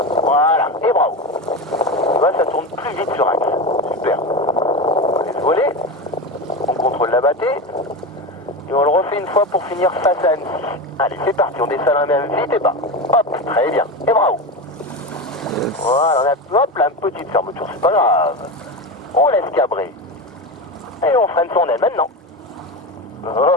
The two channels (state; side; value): normal; both; correlation 0.21